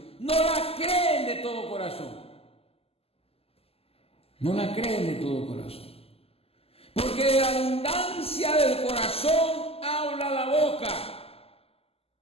no la creen de todo corazón. No la creen de todo corazón. Porque de la abundancia del corazón habla la boca.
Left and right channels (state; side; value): late; right; 0.29 ms